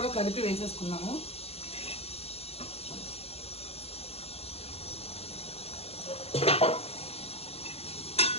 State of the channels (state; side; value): late; right; 0.29 ms